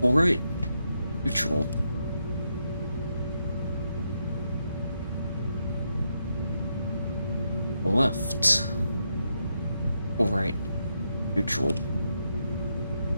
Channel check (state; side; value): inverted; both; correlation -0.82